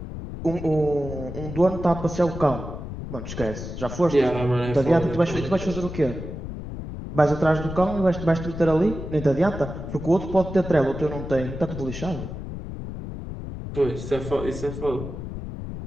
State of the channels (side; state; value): left; noise; rumble, 8 dB below the sound